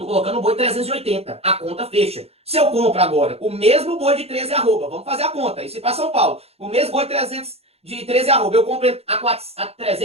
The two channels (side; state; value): left; late; 0.29 ms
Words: colocando um boi 380, a conta fecha. Se eu compro agora o mesmo boi de 13 arroba, vamos fazer a conta, isso para São Paulo, o mesmo boi de 13 arroba, eu compro a